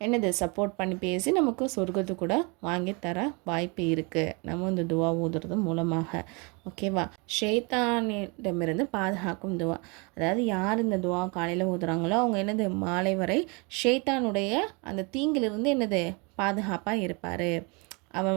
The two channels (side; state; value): left; quieter; 30.9 dB